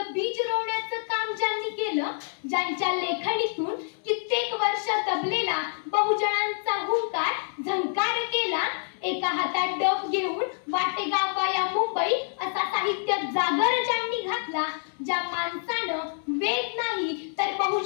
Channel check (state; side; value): silent; right; 58 dB below the other